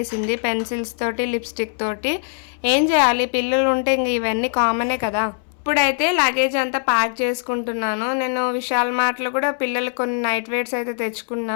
పెన్సిల్స్ తోటి లిప్స్టిక్ తోటి. ఏం చేయాలి, పిల్లలు ఉంటే ఇంక ఇవన్నీ కామనే కదా. ఇప్పుడైతే లగేజ్ అంతా ప్యాక్ చేసుకుంటున్నాను. నేను విశాల్ మార్ట్లో కూడా పిల్లలు కొన్ని నైట్ వేర్స్ అయితే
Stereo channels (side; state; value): right; silent; 65 dB below the other